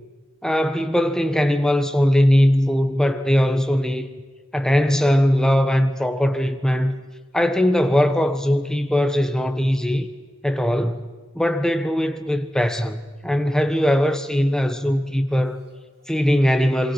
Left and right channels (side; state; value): both; normal; correlation 0.94